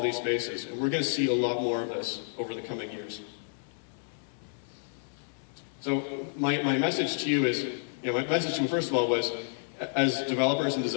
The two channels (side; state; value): right; silent; digital silence